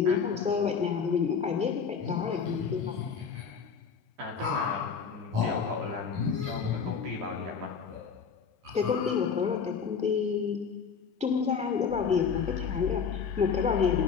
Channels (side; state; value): right; quieter; 6.2 dB